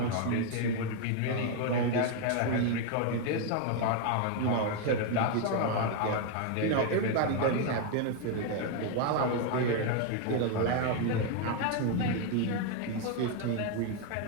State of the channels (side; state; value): both; different; correlation 0.01